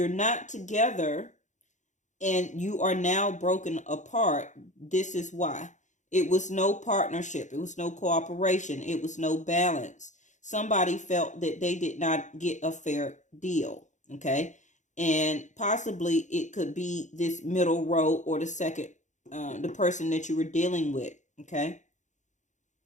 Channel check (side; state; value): right; late; 0.35 ms